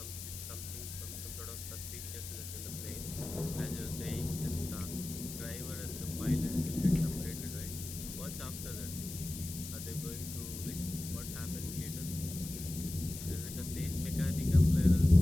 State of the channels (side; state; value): left; noise; hiss, 9 dB below the sound